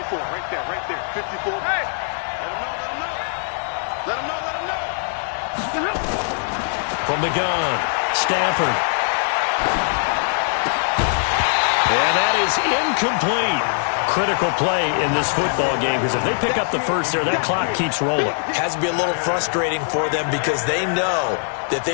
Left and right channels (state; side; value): silent; right; digital silence